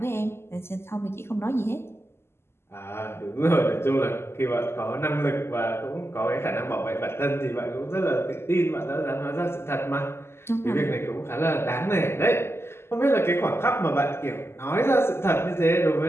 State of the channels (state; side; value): late; right; 0.12 ms